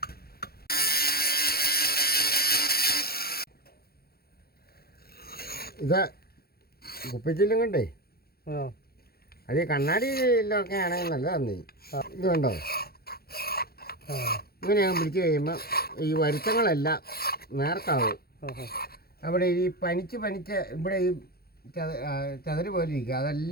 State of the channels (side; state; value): right; late; 0.45 ms